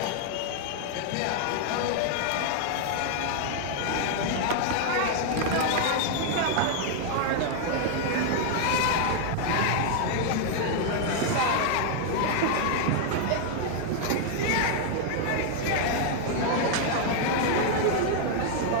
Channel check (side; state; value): both; different; correlation 0.00